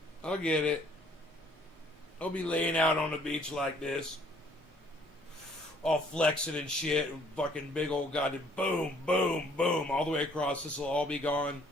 I'll be laying out on the beach like this. All flexing and shit. Fucking big old goddamn boom, boom, boom. All the way across. This will all be gone.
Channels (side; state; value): both; normal; correlation 0.61